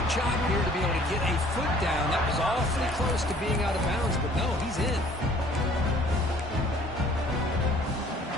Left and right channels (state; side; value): normal; both; correlation 0.55